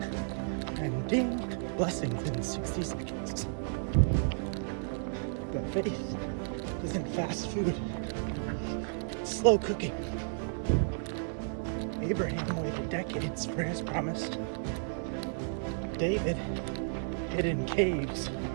and ding, blessings in 60 seconds. But faith isn't fast food. It's slow cooking. Abraham waited decades for his promise. David hid in caves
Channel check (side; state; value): left; silent; digital silence